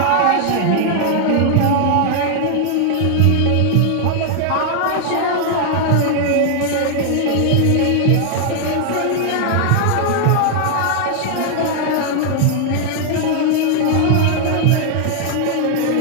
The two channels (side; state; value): both; different; correlation 0.00